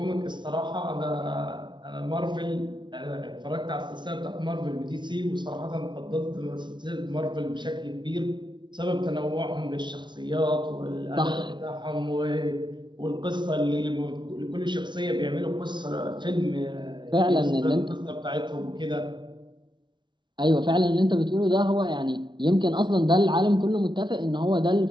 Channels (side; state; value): left; late; 0.23 ms